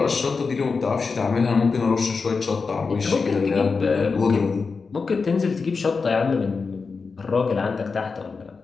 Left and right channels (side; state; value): right; quieter; 4.7 dB